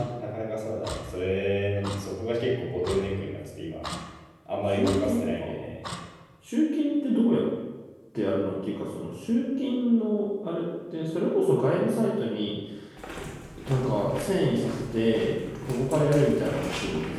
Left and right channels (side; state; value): both; identical; correlation 1.00